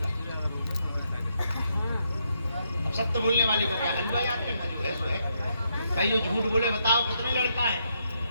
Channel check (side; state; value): both; inverted; correlation -0.78